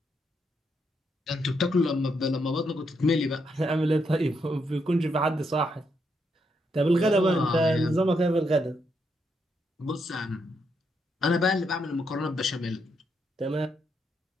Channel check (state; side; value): normal; both; correlation 0.79